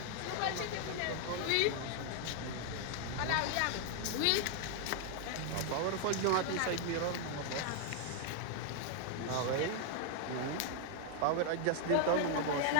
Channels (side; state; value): both; different; correlation 0.00